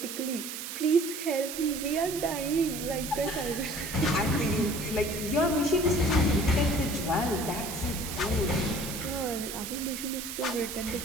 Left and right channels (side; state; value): right; noise; hiss, 7 dB below the sound